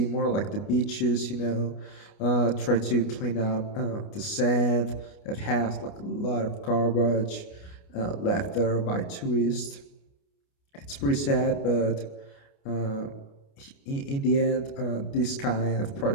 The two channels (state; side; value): late; right; 29 ms